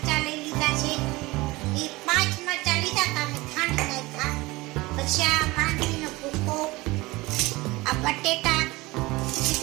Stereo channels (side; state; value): left; quieter; 21.4 dB